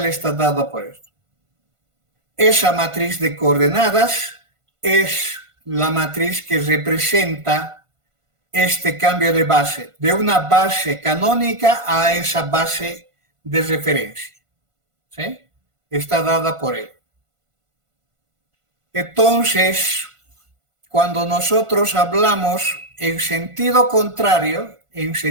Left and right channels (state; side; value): late; left; 1.5 ms